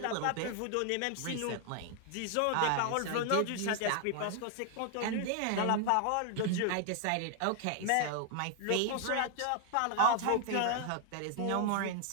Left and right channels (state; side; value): different; both; correlation 0.00